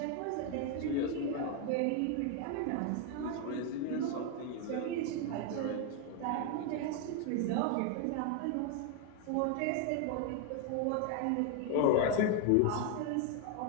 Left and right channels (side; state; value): both; different; correlation 0.01